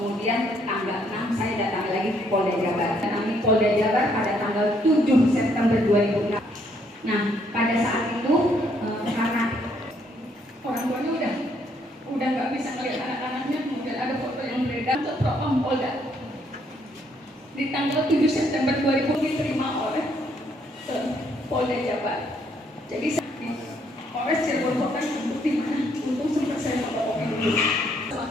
tanggal 6 saya datang lagi ke Polda Jabar. Kami Polda Jabar pada tanggal 7 September 2006. Nah, pada saat itu karena orang tuanya udah nggak bisa melihat anak-anaknya, kemudian ada foto yang beredar ke Propam Polda. Di tanggal 7 September 2000 diterima oleh Polda Jabar. Jadi Polres Cirebon Kota bukti mana? Untung sempat saya melaporkan dulu. Sama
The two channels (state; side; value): normal; both; correlation 0.70